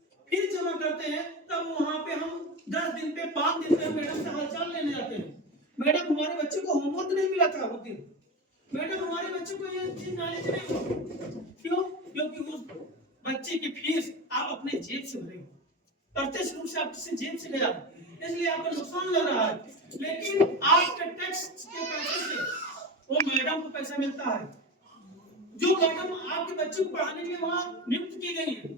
फीस जमा करते हैं, तब वहां पे हम 10 दिन पे 5 दिन पे मैडम से हालचाल लेने जाते हैं। मैडम हमारे बच्चे को होमवर्क नहीं मिला था उस दिन, मैडम हमारे बच्चे को ये चीज नॉलेज नहीं हुआ, क्यों? क्योंकि उस बच्चे की फीस आप अपने जेब से भरे हो, प्रत्यक्ष रूप से आपसे जेब से गया, इसलिए आपको नुकसान लग रहा है। लेकिन आपके टैक्स के पैसे से वो मैडम को पैसा मिलता है, जो मैडम आपके बच्चे को पढ़ाने के लिए वहां नियुक्त की गई है।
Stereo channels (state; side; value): normal; both; correlation 0.23